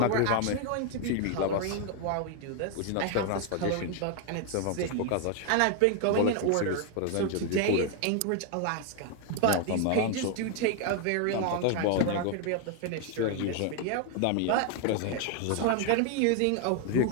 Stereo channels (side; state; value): both; different; correlation 0.00